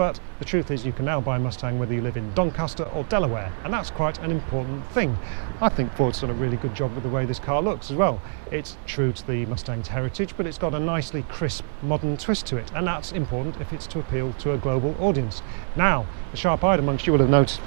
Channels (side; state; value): left; silent; digital silence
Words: the truth is you can now buy a Mustang whether you live in Doncaster or Delaware, and that's quite an important thing. I think Ford's done a really good job with the way this car looks as well. It's true to the Mustang's heritage, but it's got a nicely crisp, modern twist to it, and that's important if it's to appeal to a global audience. Now, the sharp-eyed amongst you will have noticed